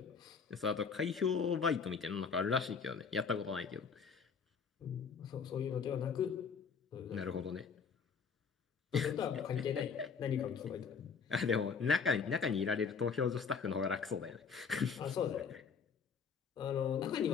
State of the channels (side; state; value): right; quieter; 6.0 dB